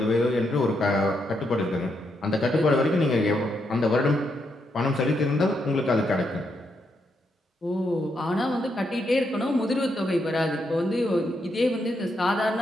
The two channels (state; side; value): normal; both; correlation 0.79